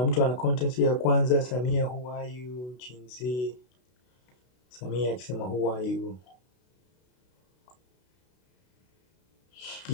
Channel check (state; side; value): late; right; 32 ms